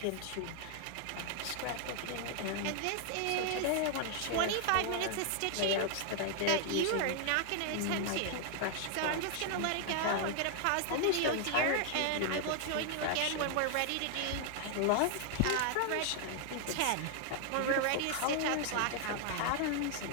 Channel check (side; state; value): both; different; correlation 0.00